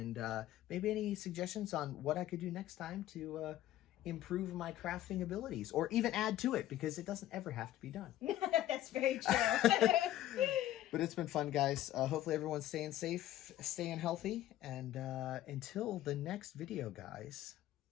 maybe any suggestions on what I could do next time to improve my crafting abilities, or even add to it, because it doesn't ever have to be done. That's very true. But it's been fun, guys. Hopefully everyone's staying safe, staying healthy, and until the next video, guys.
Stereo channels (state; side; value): quieter; right; 13.7 dB